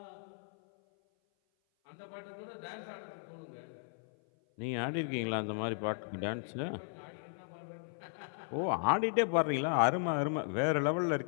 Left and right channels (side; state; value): right; silent; 54 dB below the other